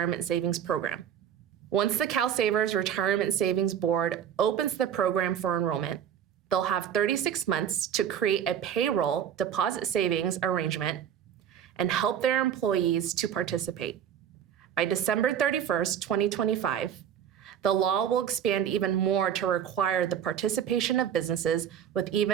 savings program. Once the CalSavers Retirement Savings Board opens the program for enrollment, they'll have 36 months to create a payroll deposit savings arrangement and help their employees to participate. By December 31st, 2025, the law will expand even more to require the participation of businesses with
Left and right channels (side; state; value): left; quieter; 9.2 dB